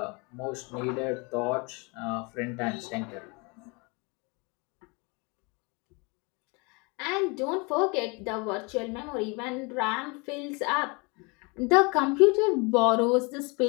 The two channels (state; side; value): quieter; right; 29.6 dB